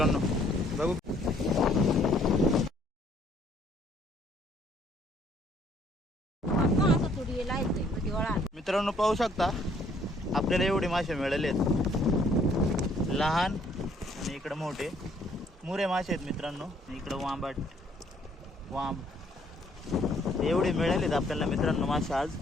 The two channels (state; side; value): normal; both; correlation 0.63